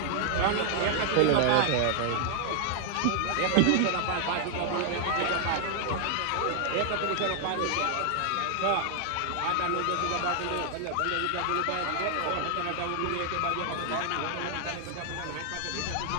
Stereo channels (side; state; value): both; different; correlation 0.00